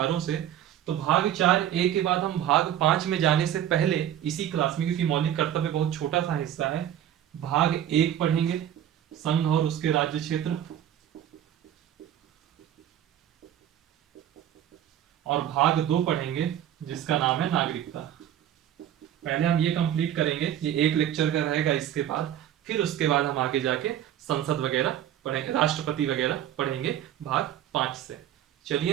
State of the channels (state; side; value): quieter; left; 11.0 dB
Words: से। तो भाग 4A के बाद हम भाग 5 में जाने से पहले इसी क्लास में, क्योंकि मौलिक कर्तव्य बहुत छोटा सा हिस्सा है, भाग 1 पढ़ेंगे, संघ और उसके राज्य क्षेत्र, और भाग 2 पढ़ेंगे जिसका नाम है नागरिकता। पहले हम ये कंप्लीट करेंगे, ये एक लेक्चर का रहेगा इसके बाद, फिर उसके बाद हम आगे जाके संसद वगैरह पढ़ेंगे, राष्ट्रपति वगैरह पढ़ेंगे भाग 5 से।